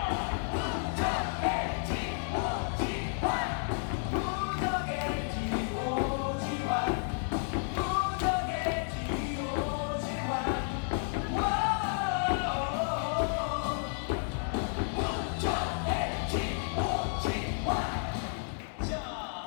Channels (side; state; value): right; silent; 57 dB below the other